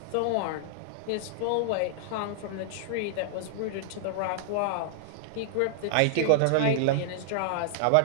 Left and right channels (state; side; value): different; both; correlation -0.01